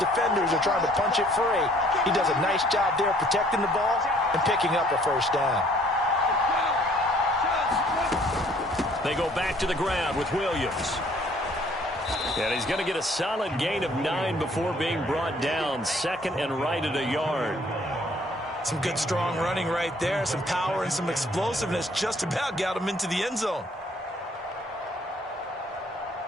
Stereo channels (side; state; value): both; normal; correlation 0.60